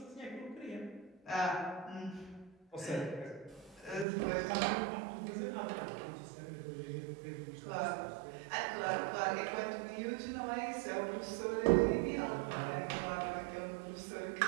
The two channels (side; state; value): left; drops out; at 4.0 s